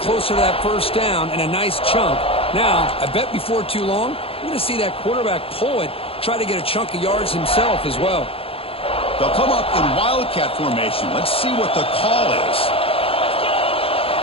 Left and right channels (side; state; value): right; late; 0.27 ms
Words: closer to that first down and a nice chunk. Now, I bet before too long, we're going to see that quarterback pull it, try to get a chunk of yards himself as well. They'll come up in Wildcat formation. Let's see what the call is.